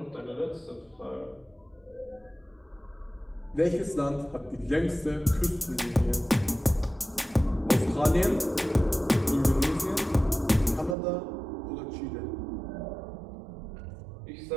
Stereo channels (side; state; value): left; drops out; at 11.0 s